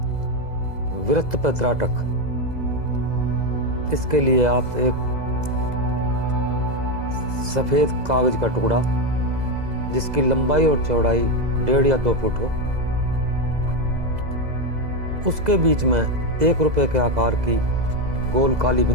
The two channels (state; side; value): late; left; 2.0 ms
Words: वृत्त पर त्राटक। इसके लिए आप एक सफ़ेद कागज का टुकड़ा जिसकी लंबाई और चौड़ाई 1.5 या 2 फुट हो, उसके बीच में 1 रुपए के आकार की गोल काली